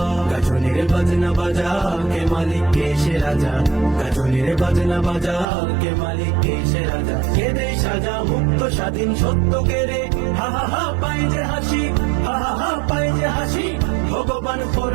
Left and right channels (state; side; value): drops out; left; at 5.5 s